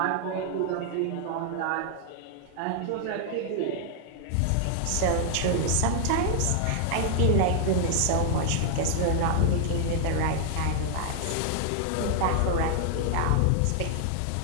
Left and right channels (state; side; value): different; both; correlation -0.01